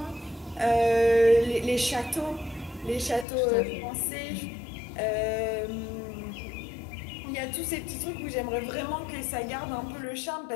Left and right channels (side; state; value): right; drops out; at 3.2 s